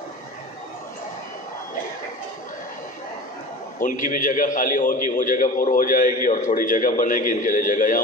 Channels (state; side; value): normal; both; correlation 0.35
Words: ان کی بھی جگہ خالی ہوگی، وہ جگہ پر ہو جائے گی اور تھوڑی جگہ بنے گی، ان کے لیے جگہ یہاں